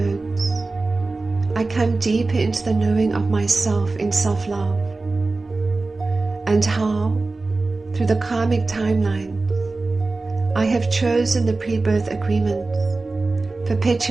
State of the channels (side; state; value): left; quieter; 3.5 dB